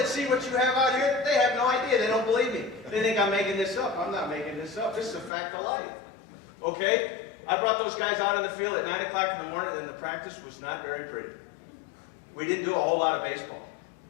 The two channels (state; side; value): drops out; right; at 5.3 s